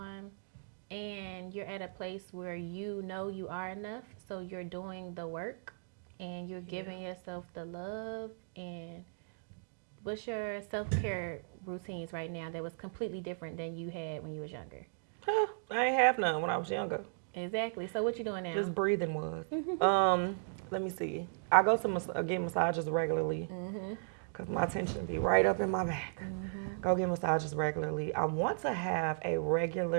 and you're at a place where you know you are enough, so you're doing the work and you're giving yourself the love. And what's your self-care routines right now that was completely different than you had when you was younger? I ain't have none when I was younger. Exactly. So what you doing now? Just breathing was. Let me see. I go to get massages regularly because my tension be right up in my back. Go get massages regularly. I want to have a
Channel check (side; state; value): left; silent; digital silence